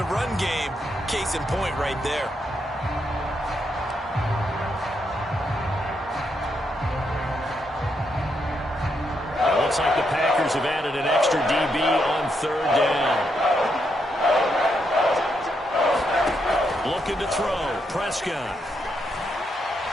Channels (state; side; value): normal; both; correlation 0.80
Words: run game. Case in point right there. It looks like the Packers have added an extra DB on 3rd down. Looking to throw. Prescott.